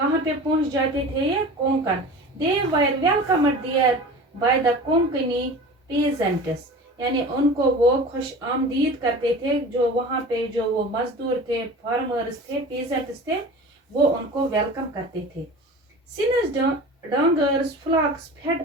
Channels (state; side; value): normal; both; correlation 0.37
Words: पे पहुंच जाते थे? ये Konkan. They were welcomed there by the Konkani peasants, यानी उनको वो खुश आमदीद करते थे, जो वहाँ पे जो वो मजदूर थे, फार्मर्स थे, peasants थे, वो उनको वेलकम करते थे। Since dungers flocks fed